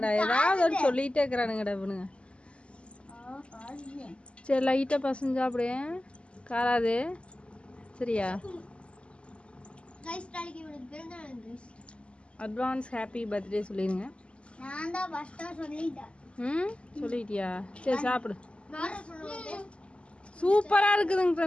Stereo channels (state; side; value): late; right; 0.055 ms